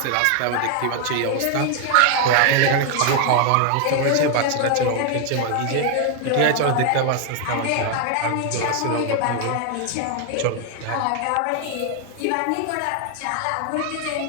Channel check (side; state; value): both; different; correlation 0.01